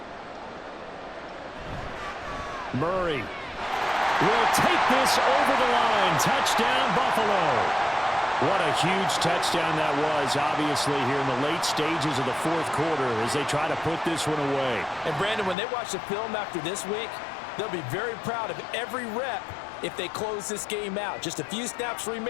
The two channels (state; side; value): drops out; right; at 15.6 s